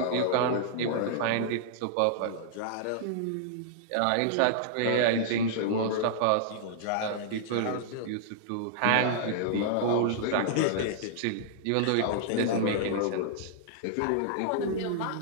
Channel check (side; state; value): both; different; correlation -0.01